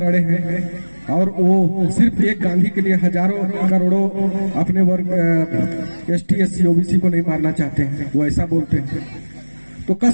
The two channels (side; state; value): both; inverted; correlation -1.00